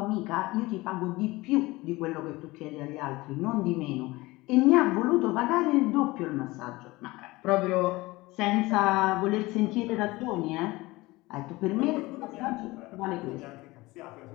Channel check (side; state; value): right; quieter; 20.9 dB